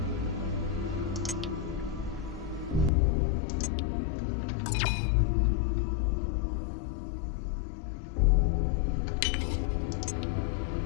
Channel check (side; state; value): right; drops out; at 2.9 s